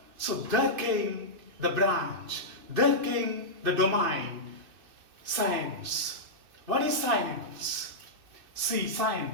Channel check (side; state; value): left; late; 2.6 ms